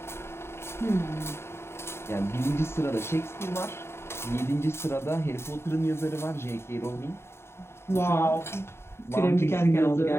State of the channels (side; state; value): right; late; 0.12 ms